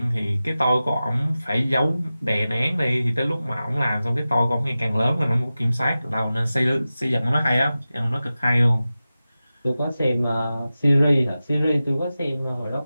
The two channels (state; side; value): inverted; both; correlation -0.95